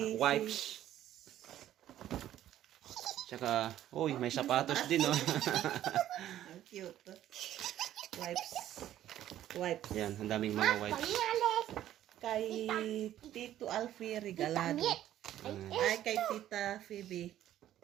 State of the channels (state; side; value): quieter; left; 12.3 dB